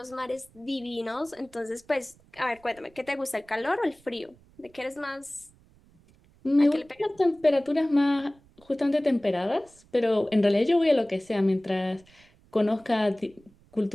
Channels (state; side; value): noise; right; rumble, 29 dB below the sound